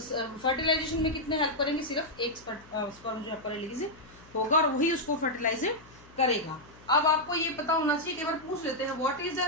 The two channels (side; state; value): left; noise; hum, 24 dB below the sound